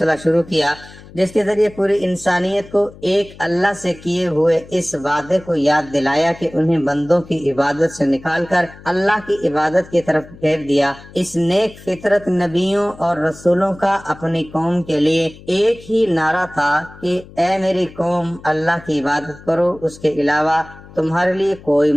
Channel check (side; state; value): left; noise; hum, 20 dB below the sound